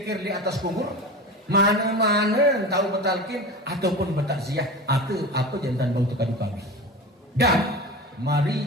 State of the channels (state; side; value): normal; both; correlation 0.30